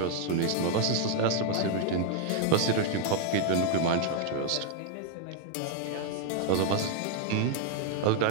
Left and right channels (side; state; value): both; different; correlation 0.00